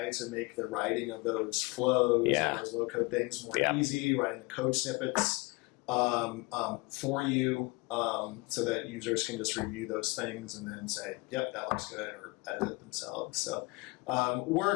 to make the writing of those flows, and those low code things more easy, writing the code snippets for you, so that users can just review those things and then say, yep, that looks good, or edit it themselves. So we're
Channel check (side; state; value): right; quieter; 26.3 dB